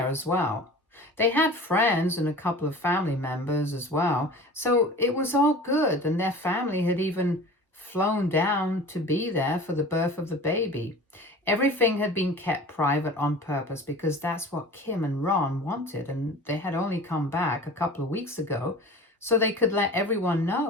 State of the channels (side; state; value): both; normal; correlation 0.39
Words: as well. They had friends and a couple of family members as well, so it was all good, and their family had even flown down to be there for the birth of the baby. Everything had been kept private on purpose because that's what Kim and Ron wanted, and they had only come back a couple of weeks ago so they could let everyone